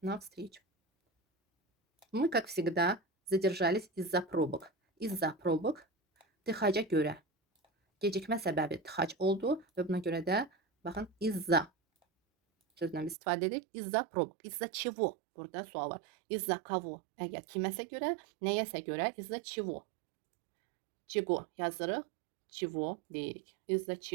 на встречу. Мы, как всегда, задержались из-за пробок. Из-за pробок tıxaca görə. Gecikmə səbəbi tıxac oldu və buna görə də baxın из-за sözündən biz istifadə edirik. Из-за pробок. Из-за чего? Burada sual var. Из-за кого? Əgər kiməsə görə, nəyəsə görə из-за чего? Чего yazırıq, чего deyirik. Из-за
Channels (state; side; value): drops out; left; at 13.2 s